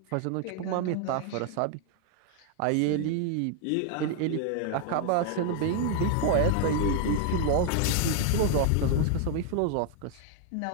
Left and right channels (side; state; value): both; different; correlation 0.00